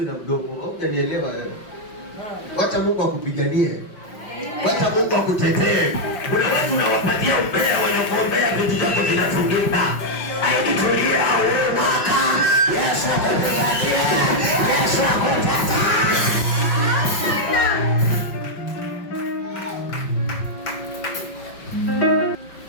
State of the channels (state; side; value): late; right; 5.4 ms